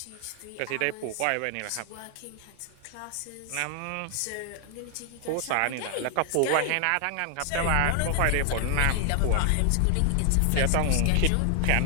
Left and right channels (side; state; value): both; different; correlation 0.00